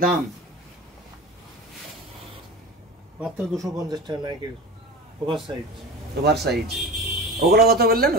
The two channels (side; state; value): both; normal; correlation 0.31